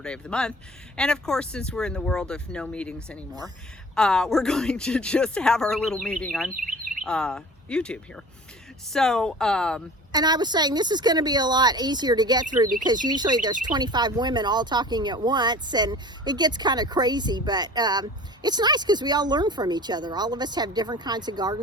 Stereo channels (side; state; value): both; normal; correlation 0.42